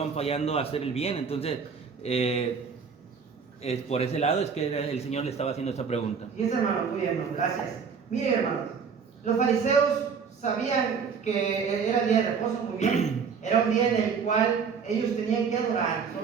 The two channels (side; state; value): left; quieter; 6.0 dB